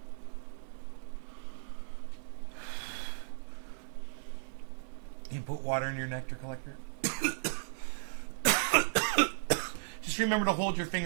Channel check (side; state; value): left; silent; digital silence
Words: You put water in your nectar collector? Just remember to hold your